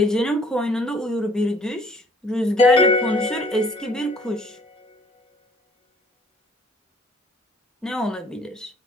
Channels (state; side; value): normal; both; correlation 0.58